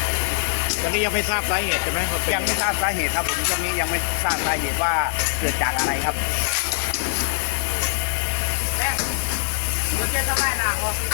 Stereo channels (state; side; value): silent; right; digital silence